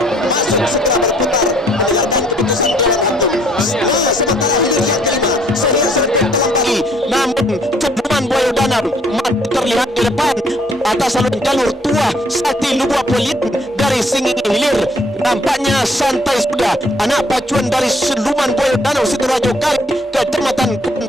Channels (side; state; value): both; normal; correlation 0.63